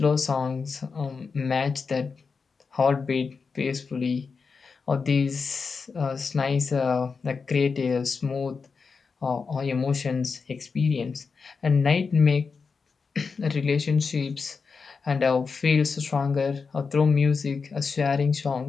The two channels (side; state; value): right; quieter; 5.1 dB